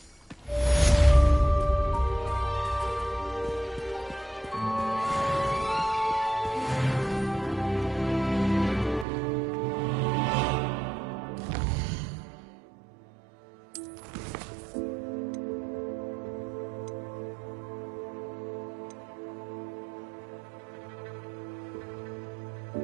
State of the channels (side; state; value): left; drops out; at 9.1 s